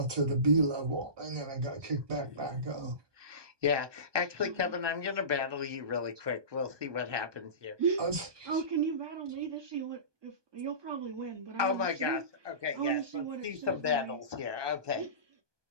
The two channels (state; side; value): late; left; 1.2 ms